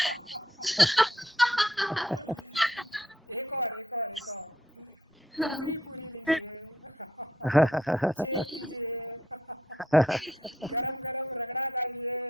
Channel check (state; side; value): normal; both; correlation 0.71